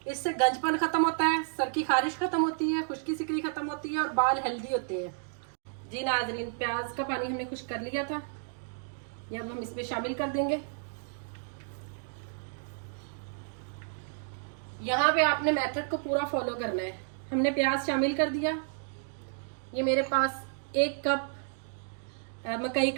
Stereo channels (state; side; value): silent; left; digital silence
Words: इससे गंजपन खत्म होता है, सर की खारिश खत्म होती है, खुश्की सिकरी खत्म होती है और बाल हेल्दी होते हैं। जी नाजरीन, प्याज का पानी हमने खुश कर लिया था, ये अब हम इसमें शामिल कर देंगे। यहाँ पे आपने मेथड को पूरा फॉलो करना है। हमने प्याज शामिल कर दिया। ये मेरे पास 1 कप मकई